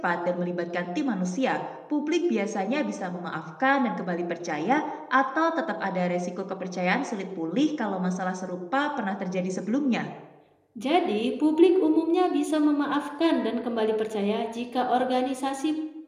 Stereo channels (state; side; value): identical; both; correlation 1.00